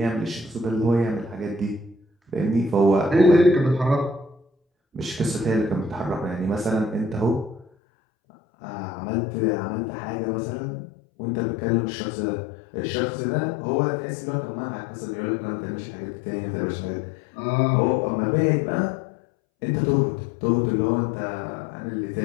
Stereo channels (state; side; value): drops out; right; at 7.7 s